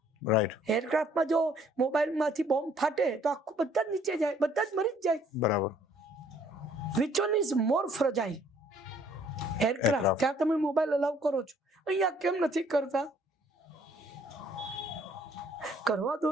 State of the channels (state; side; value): normal; both; correlation 0.61